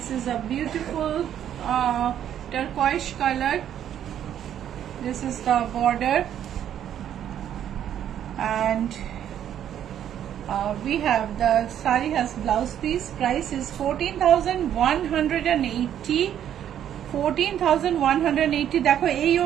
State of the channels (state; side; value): quieter; left; 10.2 dB